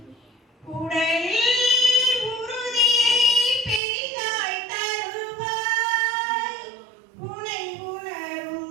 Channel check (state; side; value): drops out; left; at 3.8 s